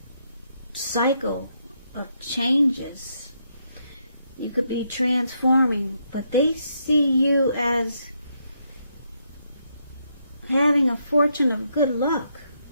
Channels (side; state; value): both; inverted; correlation -0.77